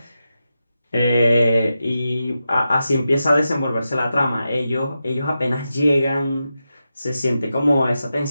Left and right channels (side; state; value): both; inverted; correlation -0.90